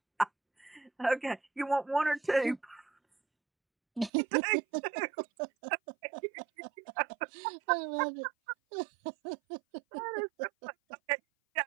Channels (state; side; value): drops out; left; at 4.1 s